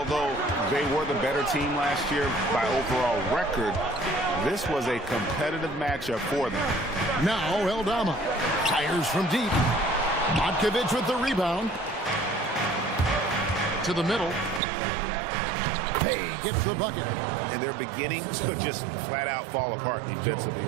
they were the better team last year by overall record, this was a competitive matchup for them. Now Eldama fires from deep. Matkovic with the rebound. To the middle. Pay gets the bucket. And they're beginning to just flat out fall apart defensively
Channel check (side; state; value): left; drops out; at 14.6 s